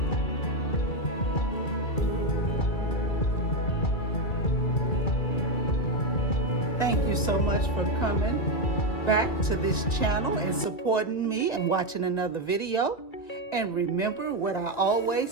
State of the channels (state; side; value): late; right; 2.6 ms